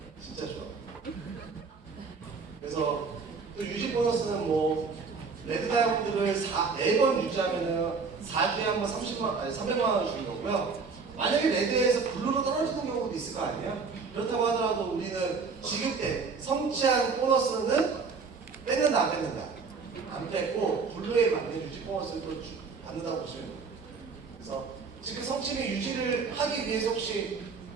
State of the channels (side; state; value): left; quieter; 4.9 dB